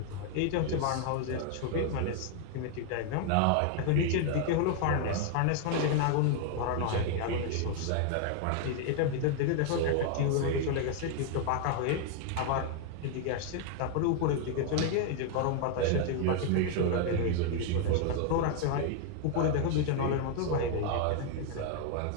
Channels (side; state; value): both; different; correlation 0.00